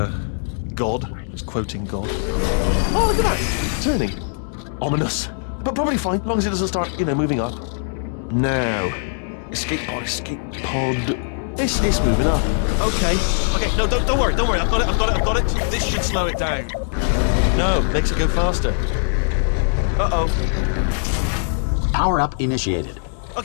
God. Just quoting God. Oh, look at that! Turning. Ominous. But probably fine, as long as it doesn't start, moving up. Now. Escape pod. It's moving up. Okay, no, don't worry. I've got it. This should slow it down. No, makes it go faster. Uh-oh. Power up initiated.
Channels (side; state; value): right; silent; 65 dB below the other